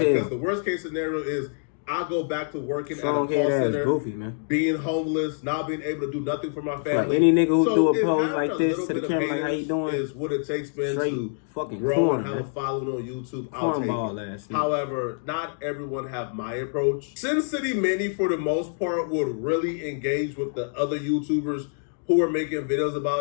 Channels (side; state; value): right; silent; digital silence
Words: hell. Because the worst case scenario is I go back to working strong at a call center, goofy, man. being homeless, not being able to do nothing for my family. Like any nigga who do a pose like this to the camera, like how you doing, is what it takes, man, to fucking grow and have a following on YouTube. I'll take it. However, not everyone have my approach. Sin City Manny, for the most part, would really engage with the other YouTubers who are making videos